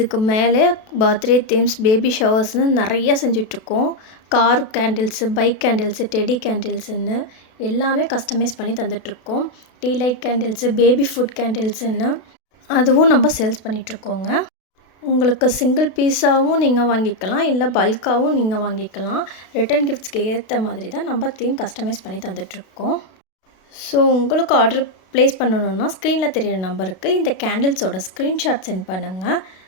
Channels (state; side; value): late; right; 32 ms